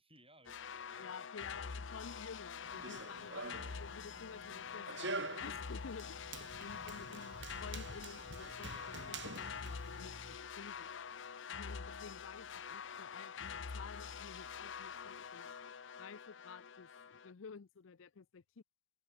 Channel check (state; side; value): quieter; right; 3.5 dB